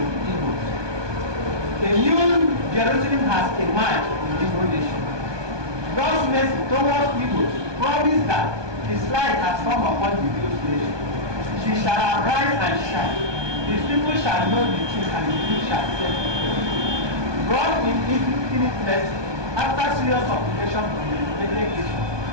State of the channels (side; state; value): left; late; 1.2 ms